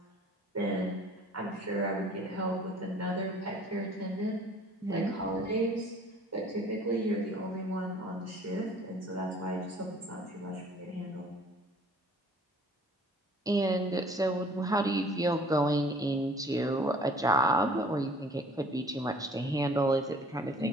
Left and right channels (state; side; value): normal; both; correlation 0.53